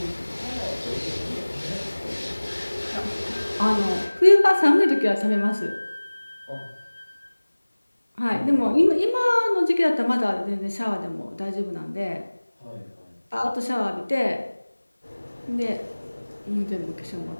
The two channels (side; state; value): both; inverted; correlation -1.00